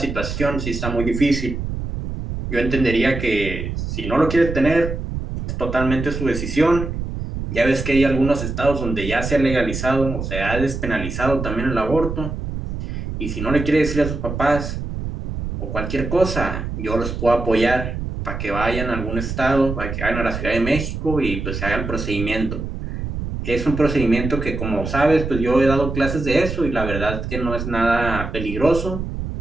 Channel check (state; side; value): noise; right; rumble, 5 dB below the sound